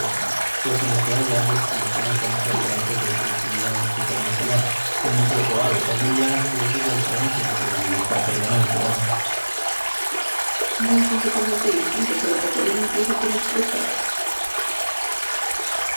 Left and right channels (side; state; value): both; inverted; correlation -1.00